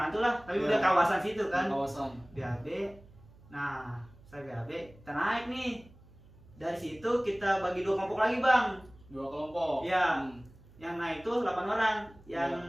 lah, tapi Iya. udah kawasan situ kan. Kawasan. BAB. Nah, saya BAB, kita naik nih. Dari situ kita bagi 2 kelompok lagi, Bang. 2 kelompok. Iya. Hmm. Yang naik tuh 8 orang. Yang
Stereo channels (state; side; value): noise; right; hum, 24 dB below the sound